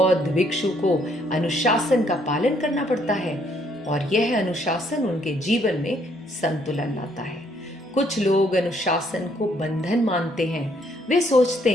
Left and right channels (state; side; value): normal; both; correlation 0.68